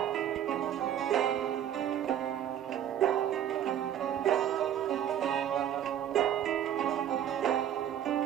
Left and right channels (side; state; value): left; quieter; 10.3 dB